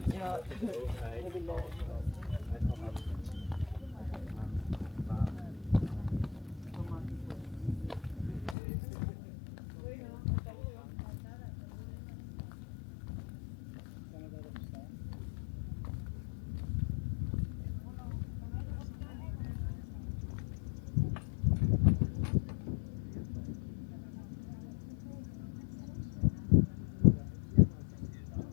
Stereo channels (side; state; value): right; drops out; at 8.6 s